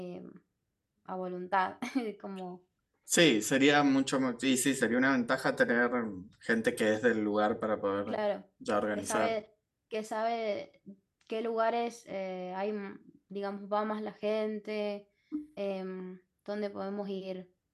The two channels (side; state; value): both; identical; correlation 1.00